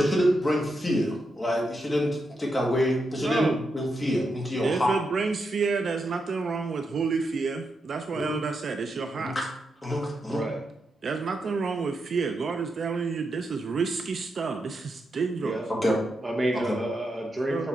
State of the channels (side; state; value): both; normal; correlation 0.84